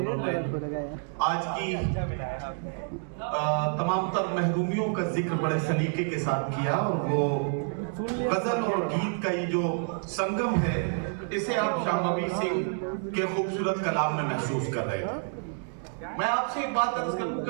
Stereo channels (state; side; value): silent; left; 58 dB below the other